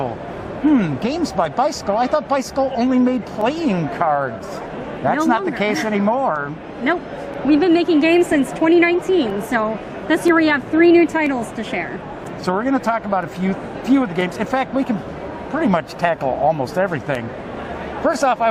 Games by Bicycle? I thought Bicycle only made playing cards. That's not the case anymore. Nope. We've been making games since 2019, so this year we have 3 new titles to share. So we're going to talk about a few of the games. In fact, we can pretty much tackle almost everything. First off, I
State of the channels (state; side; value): identical; both; correlation 1.00